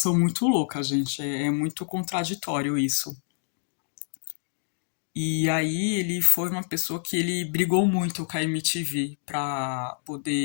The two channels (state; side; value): silent; right; digital silence